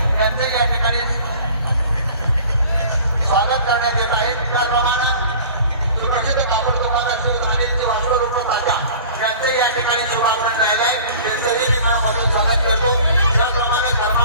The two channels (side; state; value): both; inverted; correlation -0.44